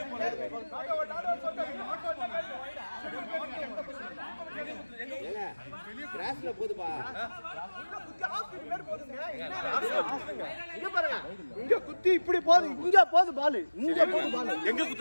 போனது கிராஸ்ல போதுப்பா இங்க பாருங்க இங்க குத்தி இப்படி போகுது இங்க போகுது பால் இங்க போகுது பால் எங்க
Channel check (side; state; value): both; inverted; correlation -1.00